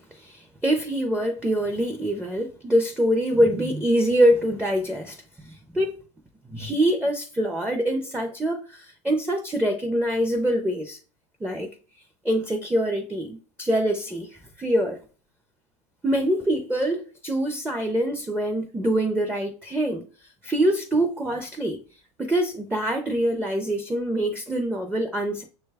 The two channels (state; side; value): normal; both; correlation 0.76